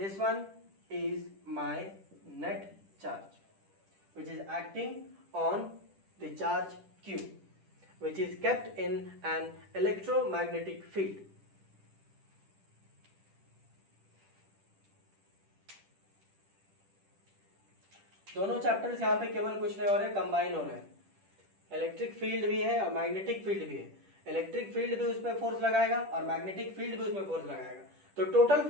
one is my net charge which is acting on the charge q, which is kept in an electromagnetic field. दोनों chapters यहाँ पे केवल कुछ नहीं हो रहे, combine हो रहे हैं. इलेक्ट्रिक फील्ड भी है और मैग्नेटिक फील्ड भी है. इलेक्ट्रिक फील्ड भी उस पर फोर्स लगाएगा और मैग्नेटिक फील्ड भी उसमें फोर्स लगाएगा. तो टोटल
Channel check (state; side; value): late; left; 10 ms